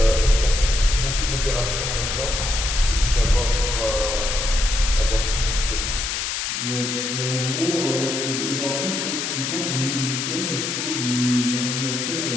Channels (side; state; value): left; noise; hiss, 2 dB below the sound